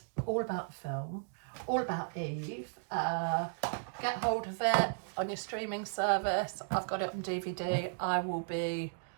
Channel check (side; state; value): left; silent; digital silence